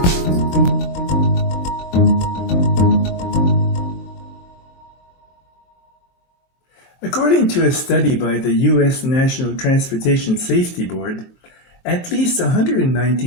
According to a study by the U.S. National Transportation Safety Board, at least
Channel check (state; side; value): late; right; 22 ms